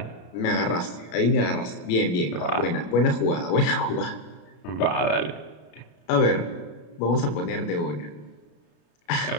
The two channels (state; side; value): late; right; 33 ms